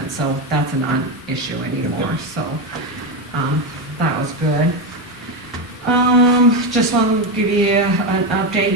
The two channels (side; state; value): both; normal; correlation 0.11